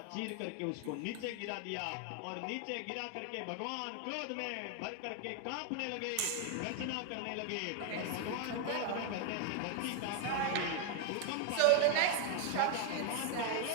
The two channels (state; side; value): different; both; correlation 0.00